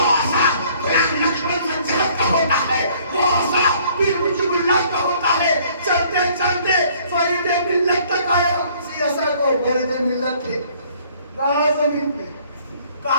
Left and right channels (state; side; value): inverted; both; correlation -0.59